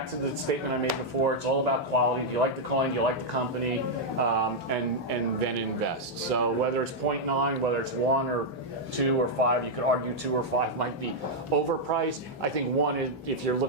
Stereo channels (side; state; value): both; normal; correlation -0.03